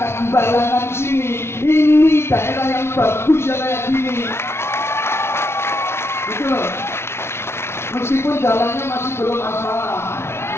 Balangan sini. Ini daerah yang bagus ya kayak gini. Gitu loh. Meskipun jalannya masih belum asfal,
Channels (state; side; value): late; right; 0.12 ms